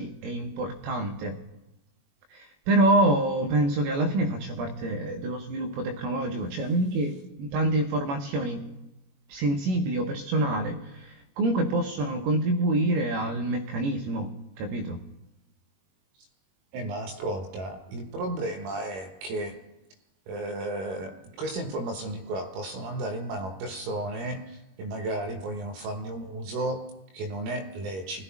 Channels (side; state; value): left; late; 21 ms